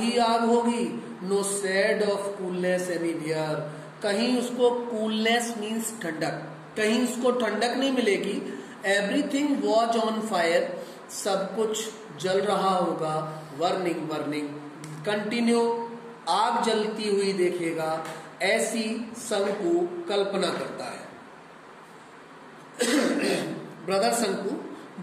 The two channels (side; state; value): both; identical; correlation 1.00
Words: आग होगी। No shade of coolness anywhere, कहीं उसको कूलनेस मीन्स ठंडक, कहीं उसको ठंडक नहीं मिलेगी। एवरीथिंग वॉज ऑन फायर, सब कुछ जल रहा होगा। वर्निंग वर्निंग कंटिन्यू, आग जलती हुई देखेगा, ऐसी शंकु कल्पना करता है। ब्रदर शंकु,